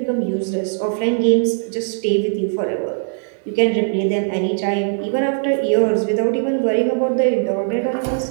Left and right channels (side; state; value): left; silent; digital silence